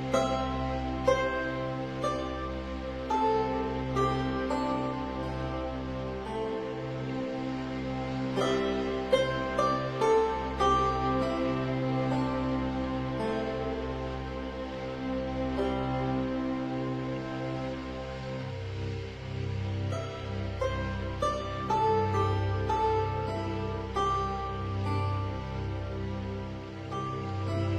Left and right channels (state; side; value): identical; both; correlation 1.00